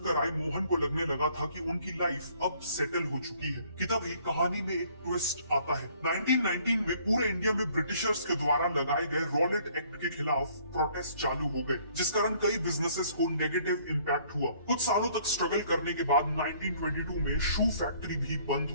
आए मोहन को लगने लगा था कि उनकी लाइफ अब सेटल हो चुकी है कि तभी कहानी में एक ट्विस्ट आता है। 1919 में पूरे इंडिया में ब्रिटिशर्स के द्वारा लगाए गए रॉलेट एक्ट के खिलाफ प्रोटेस्ट चालू हो गए, जिस कारण कई बिजनेसेस को नेगेटिव इम्पैक्ट हुआ। कुछ सालों तक स्ट्रगल करने के बाद 1922 में शू फैक्ट्री भी बंद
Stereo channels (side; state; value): both; inverted; correlation -0.60